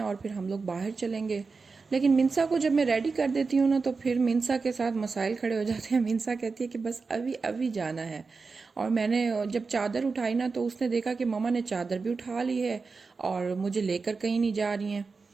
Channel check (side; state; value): left; quieter; 4.5 dB